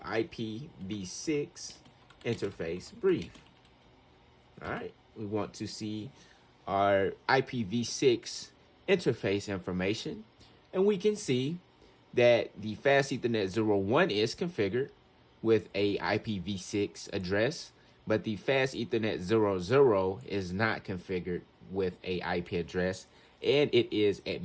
IPv6 interface brief. All right, we want to see our IPv6 interface information. And we can see that the fast Ethernet 01 is configured with a IPv6 address, but the fast Ethernet 00 is not configured with a IP address, and it is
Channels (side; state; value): both; identical; correlation 1.00